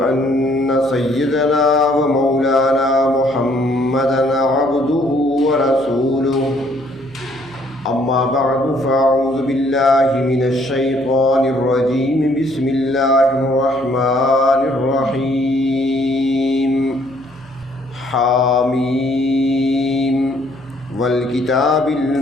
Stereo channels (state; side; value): noise; right; hum, 24 dB below the sound